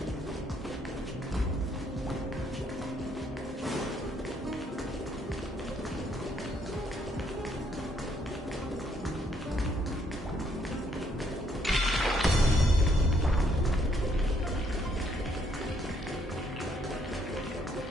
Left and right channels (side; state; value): both; normal; correlation 0.70